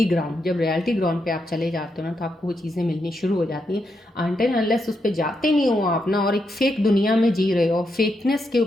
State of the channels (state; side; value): normal; both; correlation 0.82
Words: ground. जब रियलिटी ग्राउंड पे आप चले जाते हो ना, तो आपको वो चीज़ें मिलनी शुरू हो जाती हैं। अनटिल अनलेस उस पर जाते नहीं हो आप ना, और एक फेक दुनिया में जी रहे हो, फेकनेस के